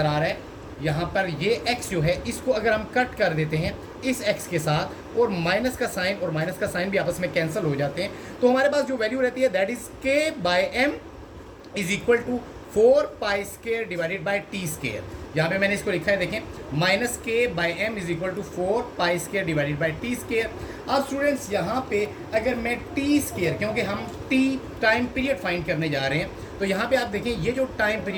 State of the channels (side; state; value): both; identical; correlation 1.00